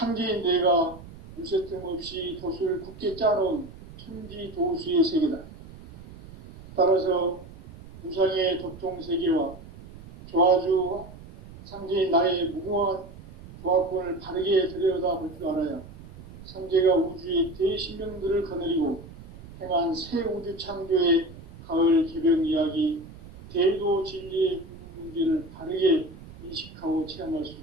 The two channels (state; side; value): noise; right; rumble, 17 dB below the sound